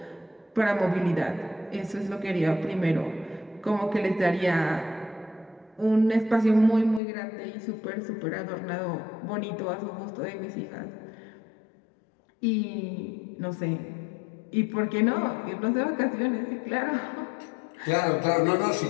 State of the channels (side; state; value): right; drops out; at 7.0 s